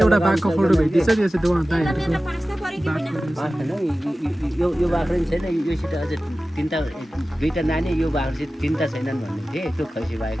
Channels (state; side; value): normal; both; correlation 0.96